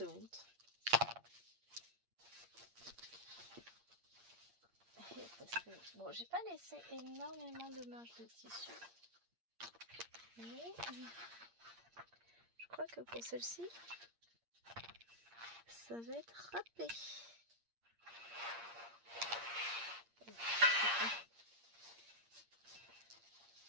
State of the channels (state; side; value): late; left; 8.6 ms